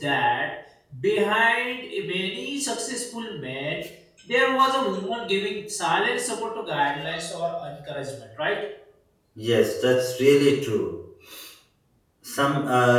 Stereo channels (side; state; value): both; identical; correlation 1.00